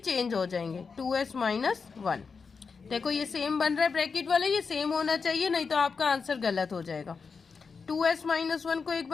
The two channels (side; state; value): right; quieter; 5.2 dB